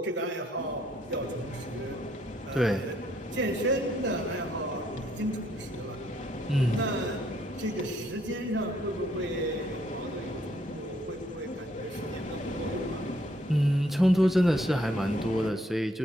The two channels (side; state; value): both; normal; correlation 0.69